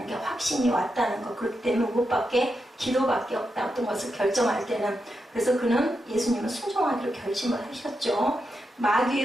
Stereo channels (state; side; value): normal; both; correlation 0.86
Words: 게 확신이 왔다는 거. 그렇기 때문에 그것밖에, 기도밖에 없다. 어떤 것을 결정할 때는. 그래서 그는, 예수님은 순종하기로 결심을 하셨죠.